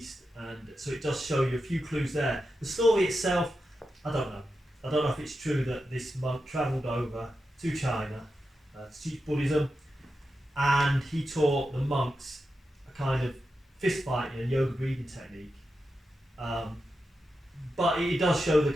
And so it does show you a few clues there. The story itself, I don't know. I don't know if it's true that this monk travelled over to China to teach Buddhism, and he taught the monks a kind of fist fighting and yoga breathing technique. But it does show the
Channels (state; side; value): normal; both; correlation 0.89